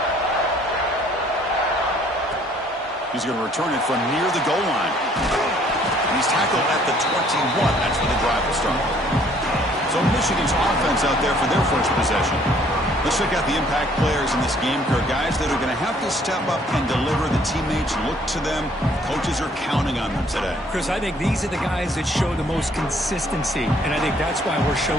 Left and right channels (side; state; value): both; normal; correlation 0.61